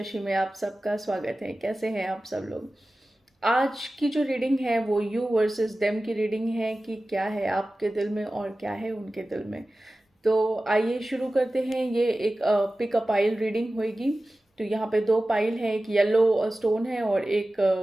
में आप सबका स्वागत है। कैसे हैं आप सब लोग? आज की जो रीडिंग है वो यू वर्सेस देम की रीडिंग है कि क्या है आपके दिल में और क्या है उनके दिल में। तो आइए शुरू करते हैं। ये एक पिक अ पाइल रीडिंग होगी। तो यहाँ पे दो पाइल है, एक येलो स्टोन है और एक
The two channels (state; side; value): normal; both; correlation 0.96